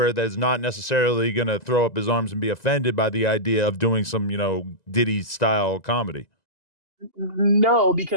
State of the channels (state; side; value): late; right; 1.9 ms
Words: that's not necessarily going to throw up his arms and be offended by the idea of doing some, Diddy style comedy. No,